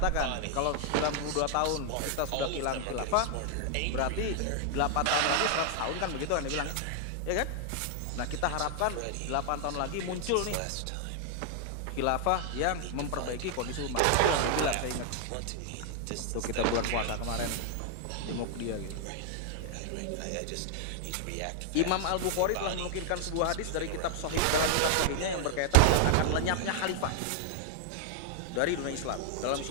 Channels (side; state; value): both; different; correlation 0.00